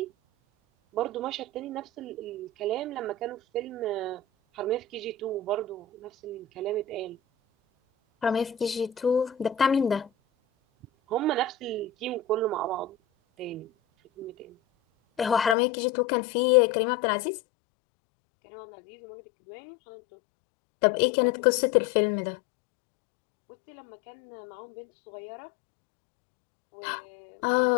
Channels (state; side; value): drops out; right; at 15.6 s